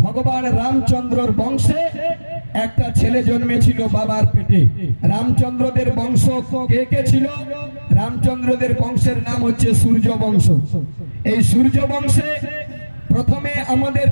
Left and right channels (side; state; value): both; inverted; correlation -1.00